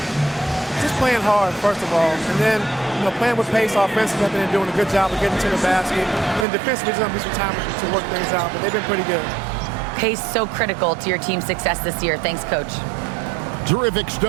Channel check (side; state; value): left; drops out; at 6.5 s